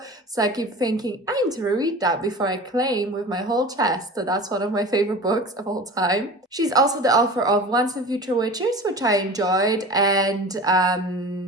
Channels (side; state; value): both; normal; correlation 0.36